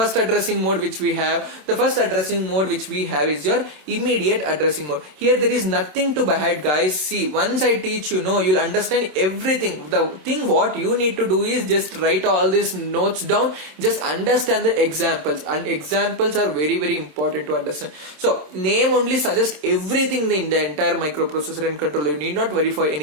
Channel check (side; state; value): left; late; 27 ms